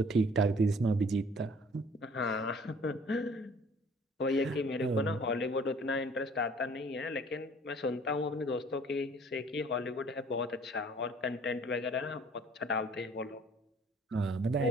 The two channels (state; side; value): normal; both; correlation 0.54